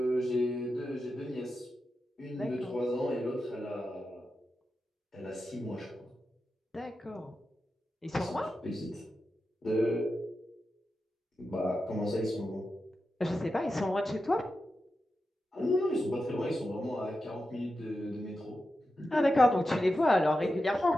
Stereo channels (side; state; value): both; normal; correlation 0.90